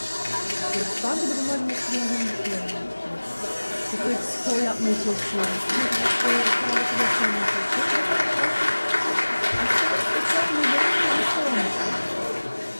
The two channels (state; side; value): inverted; both; correlation -1.00